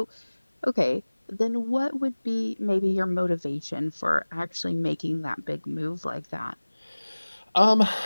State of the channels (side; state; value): both; inverted; correlation -1.00